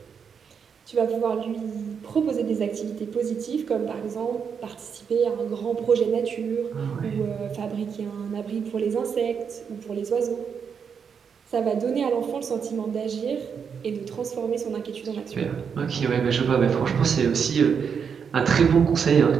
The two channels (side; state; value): left; quieter; 6.7 dB